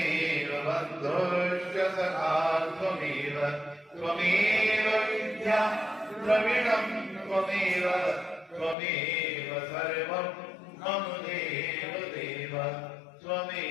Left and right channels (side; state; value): right; drops out; at 8.8 s